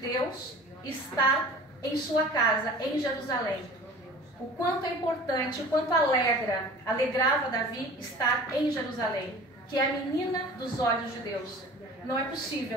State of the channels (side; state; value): both; normal; correlation 0.42